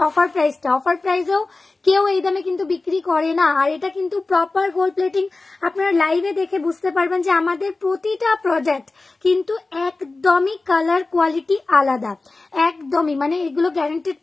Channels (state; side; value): quieter; right; 3.5 dB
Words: অফার প্রাইসেও কেউ এই দামে কিন্তু বিক্রি করে না। আর এটা কিন্তু প্রপার গোল্ড প্লেটিং, আপনারা লাইভে দেখে বুঝতে পারবেন যে আমাদের প্রতিটা প্রোডাক্ট কিন্তু একদমই কালার কোয়ালিটি আলাদা, একদমই মানে এগুলো গ্যারান্টেড